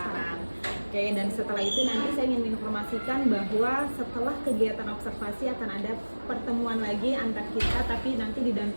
Oke, dan setelah itu nanti saya ingin menginformasikan bahwa setelah kegiatan observasi akan ada pertemuan lagi antar kita, tapi nanti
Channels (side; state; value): both; inverted; correlation -1.00